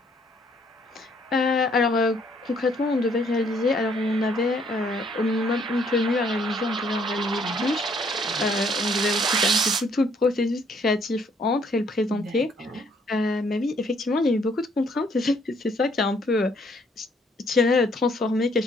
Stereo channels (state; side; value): normal; both; correlation 0.66